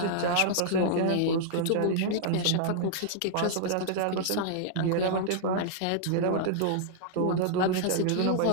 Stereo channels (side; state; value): both; different; correlation -0.01